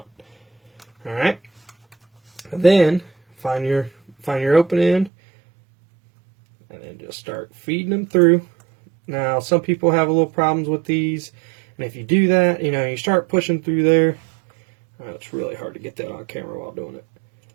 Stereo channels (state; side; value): drops out; left; at 5.1 s